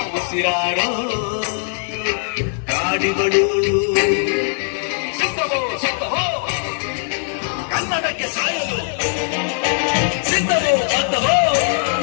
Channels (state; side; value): silent; right; 60 dB below the other